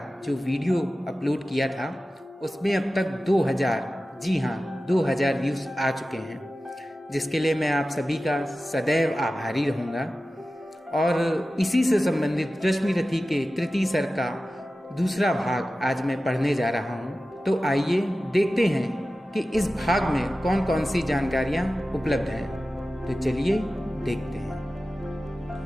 जो वीडियो अपलोड किया था, उसमें अब तक 2000, जी हाँ 2000 व्यूज़ आ चुके हैं, जिसके लिए मैं आप सभी का सदैव आभारी रहूँगा। और इसी से संबंधित रश्मि रथी के तृतीय सर का दूसरा भाग आज मैं पढ़ने जा रहा हूँ। तो आइए देखते हैं कि इस भाग में कौन कौन सी जानकारियाँ उपलब्ध हैं। तो चलिए देखते हैं।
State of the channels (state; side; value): normal; both; correlation 0.95